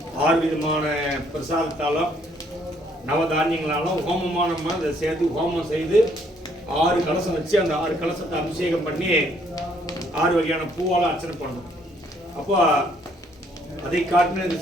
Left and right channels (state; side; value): normal; both; correlation 0.66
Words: 6 விதமான பிரசாதத்தாலும் நவதானியங்களாலும் ஹோமமாக நம்ம அதை சேர்த்து ஹோமம் செய்து 6 கலசம் வச்சு அந்த 6 கலசத்தை அபிஷேகம் பண்ணி 6 வகையான பூவால் அர்ச்சனை பண்ணணும். அப்போ அதை காட்டின இது